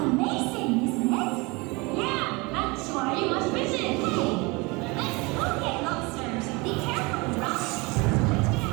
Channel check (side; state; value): left; quieter; 26.1 dB